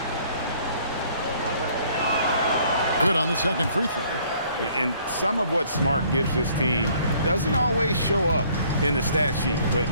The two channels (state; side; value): inverted; both; correlation -0.60